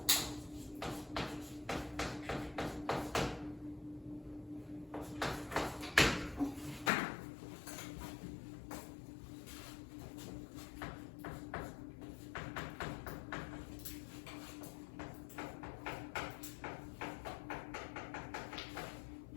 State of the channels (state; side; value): drops out; right; at 6.9 s